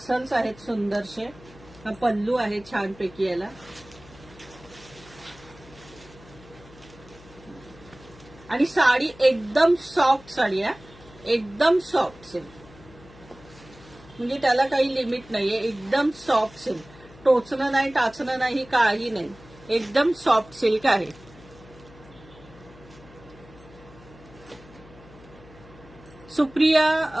आहेत सुंदरसे. हा पल्लू आहे छानपैकी याला. आणि साडी एकदम सॉफ्ट साडी आहे. एकदम सॉफ्ट सिल्क, म्हणजे त्याला काही लिमिट नाहीये. एकदम सॉफ्ट सिल्क. टोचणं नाही, टाचणं नाही, काही नाही. एकदम सॉफ्ट सिल्क आहे.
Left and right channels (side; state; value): left; noise; hum, 22 dB below the sound